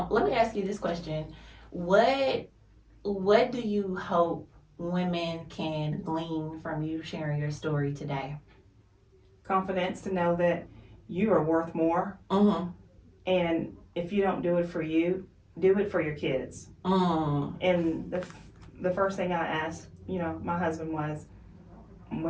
let me ask you this question: What do you hope women can glean from you sharing your story today? Confidence to know that you are worth more, and if you don't do it for you, do it for your kids. And the first thing I asked, my husband was,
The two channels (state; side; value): identical; both; correlation 1.00